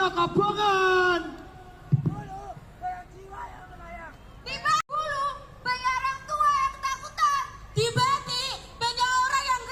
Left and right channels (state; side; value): identical; both; correlation 1.00